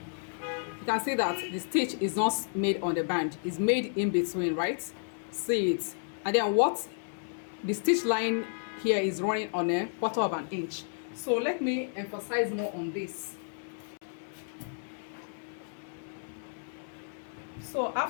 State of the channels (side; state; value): right; silent; digital silence